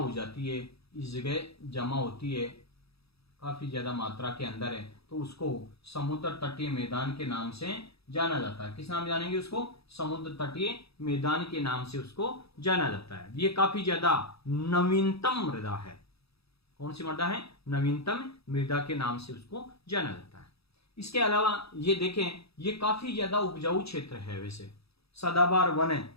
जाती है, इस जगह जमा होती है, काफी ज्यादा मात्रा के अंदर है, तो उसको समुद्र तटीय मैदान के नाम से जाना जाता है। किस नाम जानेंगे उसको? समुद्र तटीय मैदान के नाम से उसको जाना जाता है। ये काफी ज्यादा नवीनतम मृदा है। कौन सी मृदा है? नवीनतम मृदा के नाम से उसको जाना जाता है। इसके अलावा ये देखें, ये काफी ज्यादा उपजाऊ क्षेत्र है, वैसे सदाबहार वन है,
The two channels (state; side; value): late; right; 0.77 ms